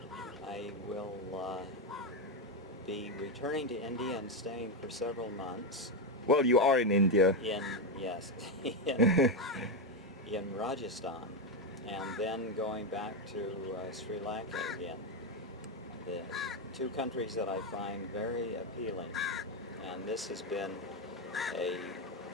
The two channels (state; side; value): normal; both; correlation 0.08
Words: I will be returning to India and staying for several months. Well, you are in India. Yes, in Rajasthan, and then going back to Sri Lanka again. The two countries that I find very appealing, and this has been a